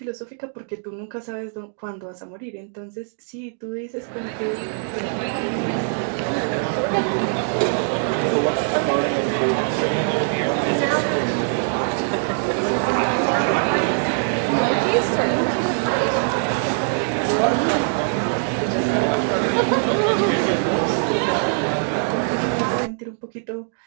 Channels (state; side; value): silent; left; 64 dB below the other